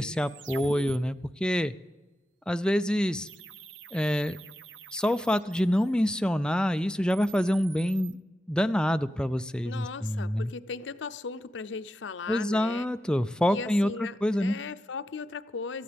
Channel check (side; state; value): both; normal; correlation 0.90